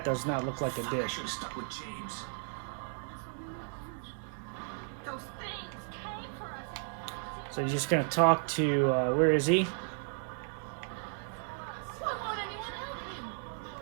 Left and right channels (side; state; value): left; silent; 55 dB below the other